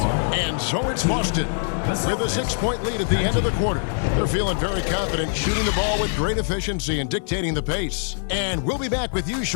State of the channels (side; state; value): right; silent; digital silence